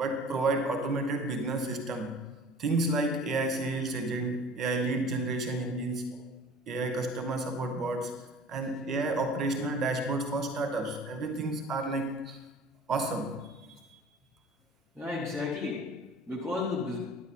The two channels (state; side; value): normal; both; correlation 0.45